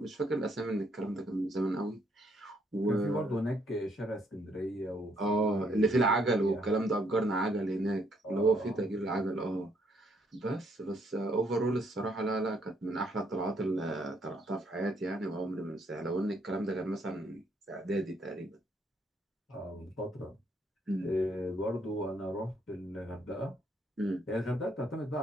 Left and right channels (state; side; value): normal; both; correlation 0.71